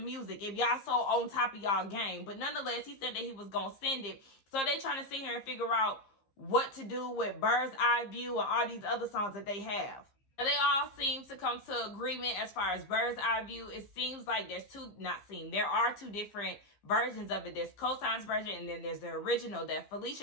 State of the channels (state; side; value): late; right; 15 ms